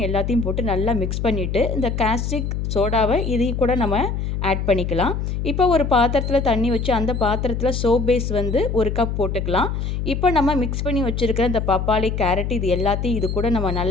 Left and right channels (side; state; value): left; noise; hum, 2 dB below the sound